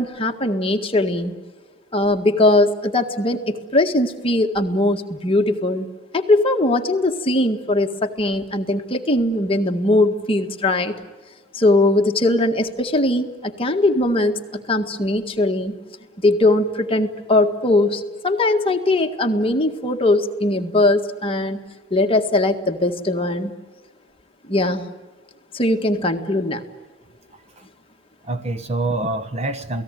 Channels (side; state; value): both; normal; correlation 0.51